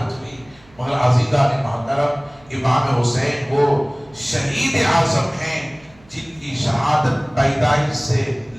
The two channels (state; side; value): noise; right; hum, 29 dB below the sound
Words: ہوئی۔ مگر عزیزان محترم، امام حسین وہ شہید اعظم ہیں جن کی شہادت پیدائش سے